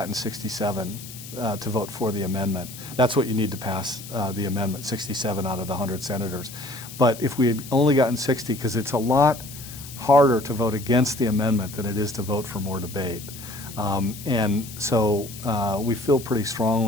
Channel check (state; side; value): noise; left; hiss, 14 dB below the sound